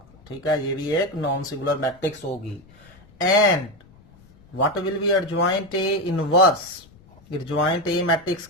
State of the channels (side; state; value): left; noise; rumble, 26 dB below the sound